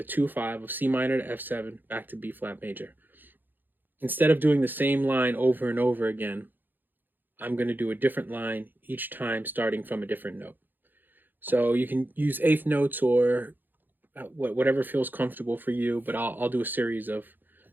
2/5 of C minor to F7 back to B flat major. Instead of doing the same line over and over again, I'm going to do a different line each time, starting from a different note. So you can use eighth notes or whatever feels comfortable for you, but I'll do a series of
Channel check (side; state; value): left; late; 0.090 ms